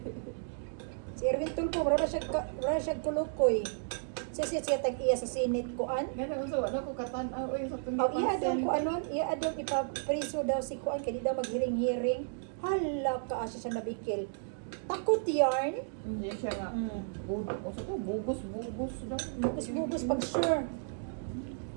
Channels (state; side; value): silent; left; digital silence